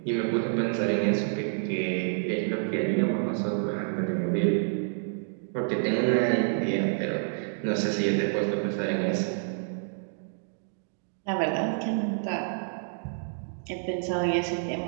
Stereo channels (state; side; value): silent; left; digital silence